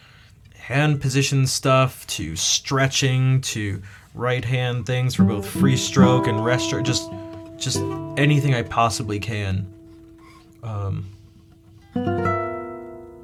hand position stuff to stretching to right hand things for both free stroke and rest stroke, just anything I possibly can.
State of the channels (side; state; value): both; identical; correlation 1.00